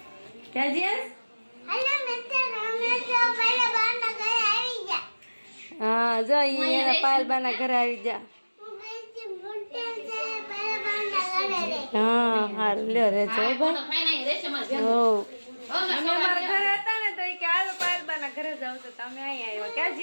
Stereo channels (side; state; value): both; inverted; correlation -1.00